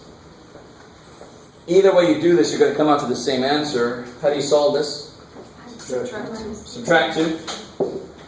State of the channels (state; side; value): identical; both; correlation 1.00